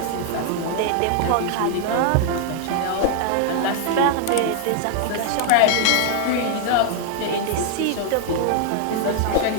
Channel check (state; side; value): different; both; correlation 0.00